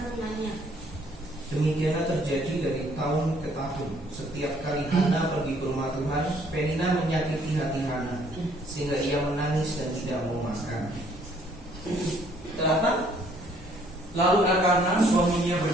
Demikianlah terjadi dari tahun ke tahun. Setiap kali Hana pergi ke rumah Tuhan, Penina menyakiti hati Hana, sehingga ia menangis dan tidak mau makan. Kenapa? Lalu Elkanah suaminya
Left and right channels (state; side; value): normal; both; correlation 0.63